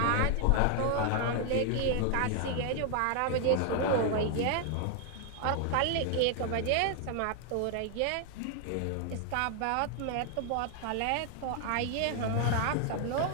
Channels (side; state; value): both; different; correlation 0.00